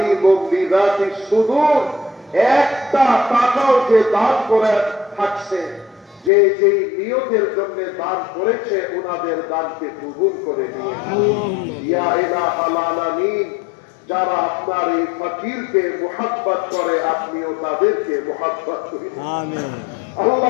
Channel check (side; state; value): right; drops out; at 6.3 s